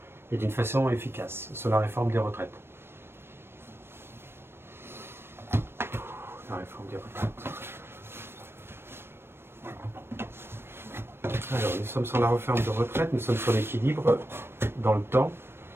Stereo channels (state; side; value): late; left; 0.12 ms